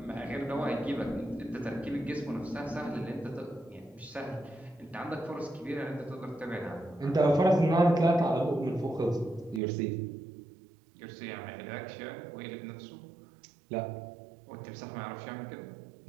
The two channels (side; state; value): left; drops out; at 9.6 s